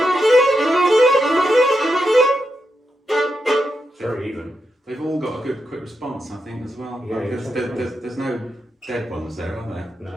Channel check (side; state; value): both; normal; correlation 0.85